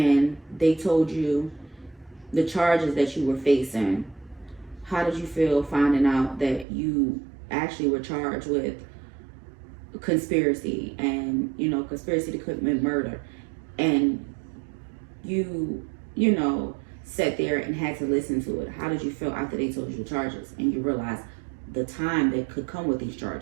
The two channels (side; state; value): left; drops out; at 6.7 s